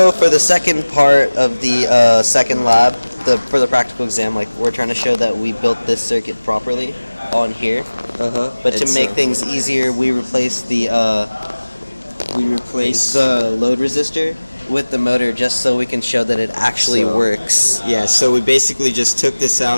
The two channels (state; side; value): inverted; both; correlation -1.00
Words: for the second part of the second lab, for the practical exam, like we're trying to show that we built this circuit properly on here. But to make things easier, we replaced the load resistor with the motor just so we can show that it actually works. Yeah, so we basically just took this